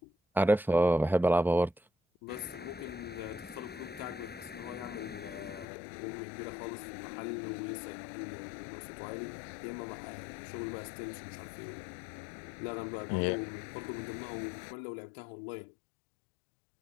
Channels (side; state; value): right; drops out; at 5.7 s